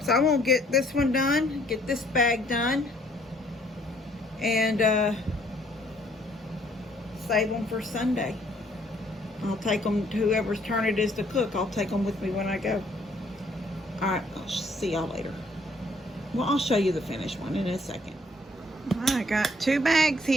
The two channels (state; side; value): normal; both; correlation 0.64